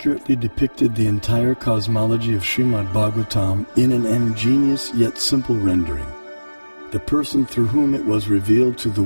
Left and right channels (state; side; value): inverted; both; correlation -1.00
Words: depicted the entire cosmology of Srimad Bhagavatam in an ingenious yet simple rendering. The person through whom it was revealed to the